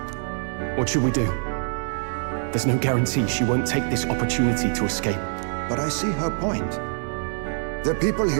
What should we do? There's no guarantee she won't take this opportunity to escape. But I see her point. The people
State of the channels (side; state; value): left; silent; digital silence